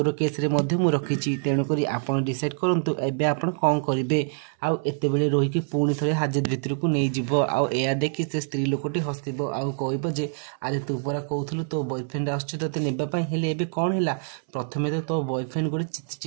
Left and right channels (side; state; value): left; silent; 61 dB below the other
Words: केस रे मध्ये मु रखिची तेणु करी आपण डिसाइड करंतु एबे आपण कोन करिवे आउ एते बेले रोही की पुणी थरे हाजत भितर को नै जिवो आउ एया देखि से स्त्री लोकटी हसिबो आउ कहबो जे अरे तू परा कहउथलु तो बॉयफ्रेंड आछु तते नेबा पई हेले एबे कोन हैला प्रथमे तो बॉयफ्रेंड गोटे